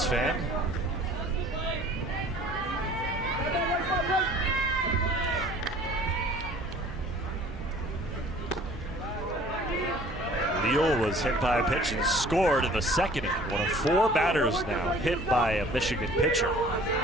fan. Leal was hit by a pitch and scored in the second inning. One of 4 batters now hit by a Michigan pitcher.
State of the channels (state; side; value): normal; both; correlation 0.50